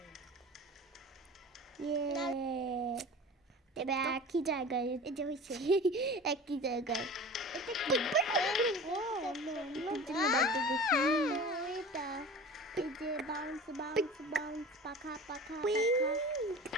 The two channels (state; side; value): normal; both; correlation 0.37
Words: এবার একই জায়গায় এই যে হয়েছে একই জায়গায় এটা কি এটা এই যে বাউন্স বাউন্স বাউন্স পাখা পাখা পাখা